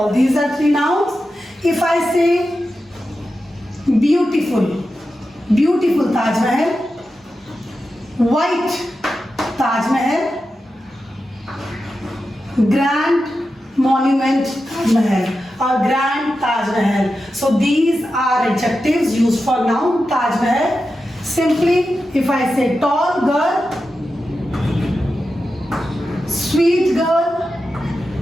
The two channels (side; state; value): both; normal; correlation 0.91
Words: These are three nouns. If I say beautiful, beautiful Taj Mahal, white Taj Mahal, grand monument Taj Mahal or grand Taj Mahal. So these are adjectives used for noun Taj Mahal. Simply, if I say tall girl, sweet girl,